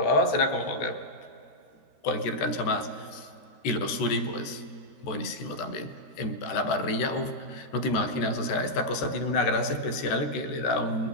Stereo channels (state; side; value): late; right; 13 ms